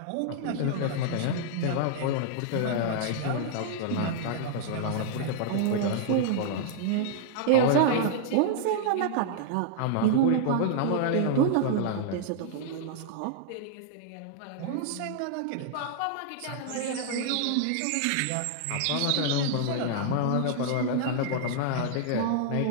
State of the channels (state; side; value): different; both; correlation -0.01